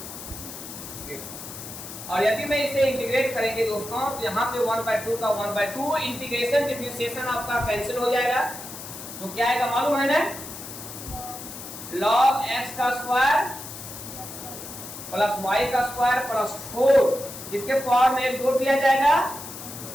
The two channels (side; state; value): left; noise; hiss, 11 dB below the sound